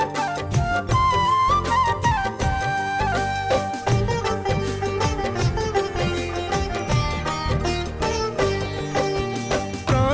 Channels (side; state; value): both; identical; correlation 1.00